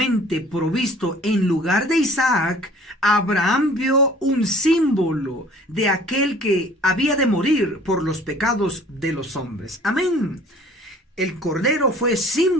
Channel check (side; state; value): both; normal; correlation 0.51